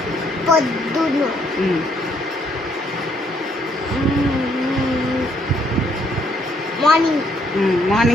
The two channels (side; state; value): both; normal; correlation 0.70